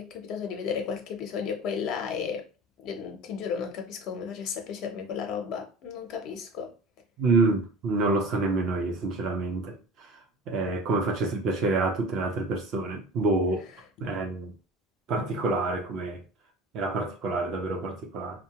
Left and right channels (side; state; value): both; normal; correlation 0.37